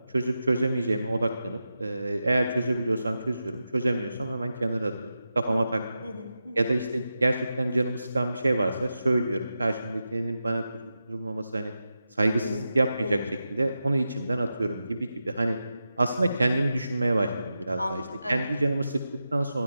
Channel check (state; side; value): inverted; both; correlation -0.90